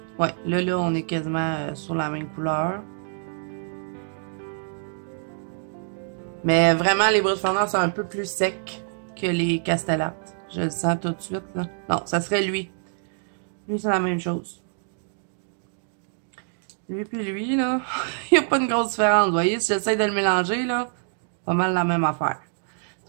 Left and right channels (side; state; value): left; silent; digital silence